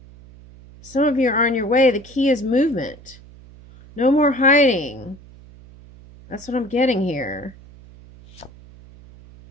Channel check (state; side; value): noise; right; hum, 22 dB below the sound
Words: Some of you are on your way. The key is movement. No more hiding. That's what I'm getting here.